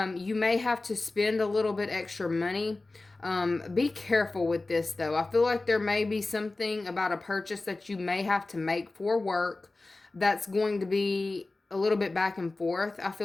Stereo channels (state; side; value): quieter; right; 3.2 dB